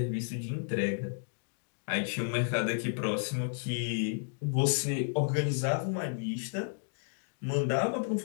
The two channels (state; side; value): silent; right; digital silence